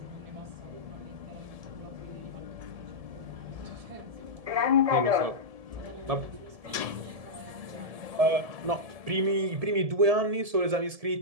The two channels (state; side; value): late; left; 1.7 ms